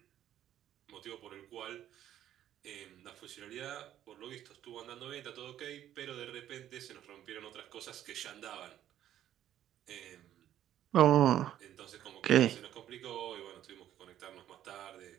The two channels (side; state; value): left; quieter; 11.6 dB